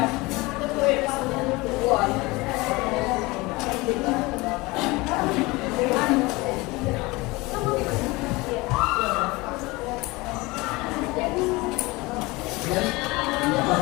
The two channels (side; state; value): right; quieter; 23.0 dB